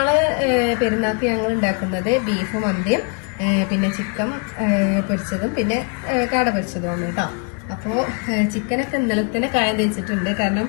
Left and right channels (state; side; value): quieter; right; 33.8 dB